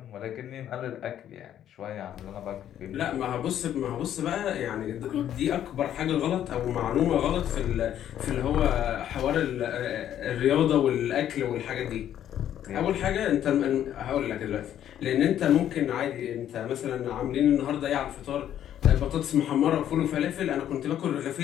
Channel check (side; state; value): right; quieter; 10.8 dB